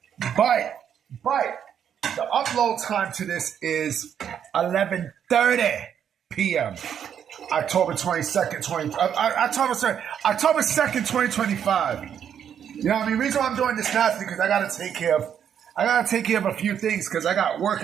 But the upload time to this is 11:30 p.m. October 22nd, October 2nd, 2025. You know what I mean? The reason why I'm doing this now is because I gotta take care of a few things because I got work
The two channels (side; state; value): left; quieter; 8.7 dB